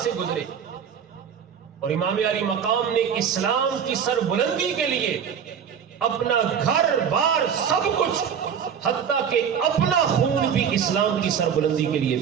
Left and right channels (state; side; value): quieter; left; 7.7 dB